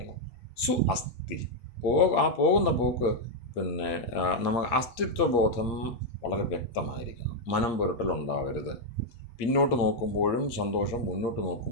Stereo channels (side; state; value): right; late; 8.6 ms